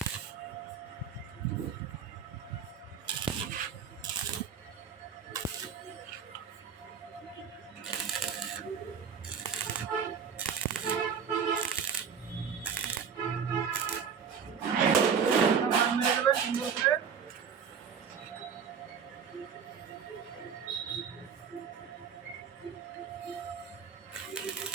মেরে দেবেন সুন্দর করে।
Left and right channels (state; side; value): quieter; left; 6.9 dB